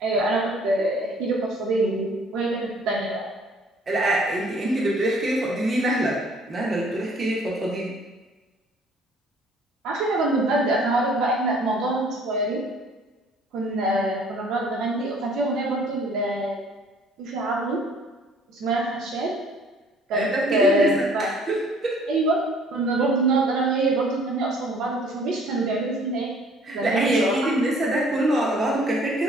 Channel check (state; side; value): normal; both; correlation 0.56